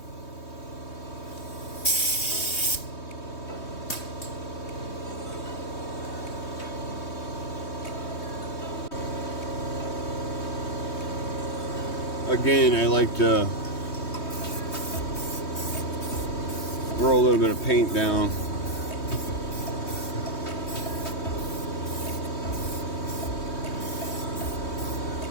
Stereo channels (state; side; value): late; right; 3.2 ms